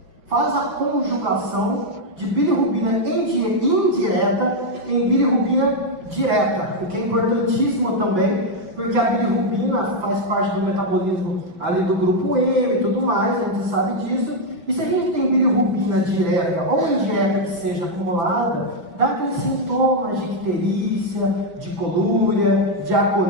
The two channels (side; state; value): left; late; 5.3 ms